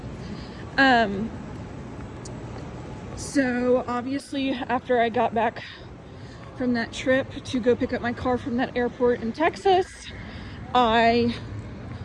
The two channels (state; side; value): identical; both; correlation 1.00